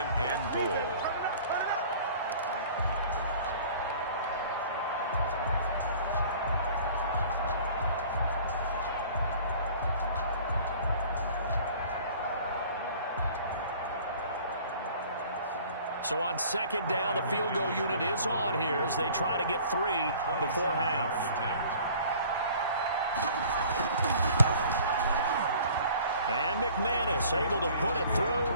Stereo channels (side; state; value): both; inverted; correlation -0.49